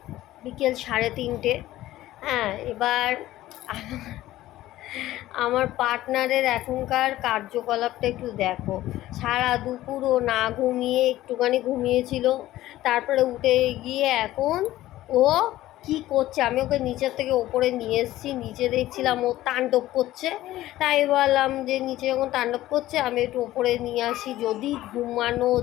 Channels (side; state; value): right; quieter; 15.3 dB